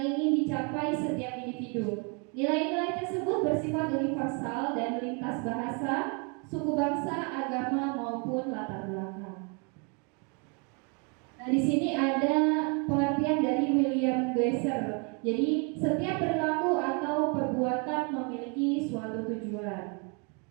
dicapai setiap individu. Nilai-nilai tersebut bersifat universal dan lintas bahasa, suku bangsa, agama maupun latar belakang. Nah, di sini ada pengertian dari William Glasser. Jadi, setiap perilaku atau perbuatan memiliki suatu tujuan.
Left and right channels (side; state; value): left; quieter; 35.0 dB